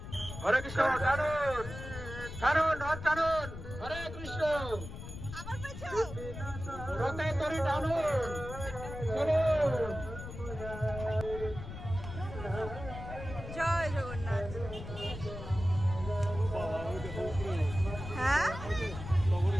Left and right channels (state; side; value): noise; left; rumble, 10 dB below the sound